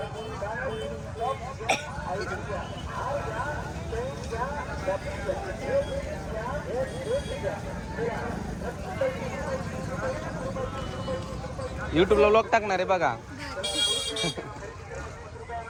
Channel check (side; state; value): both; identical; correlation 1.00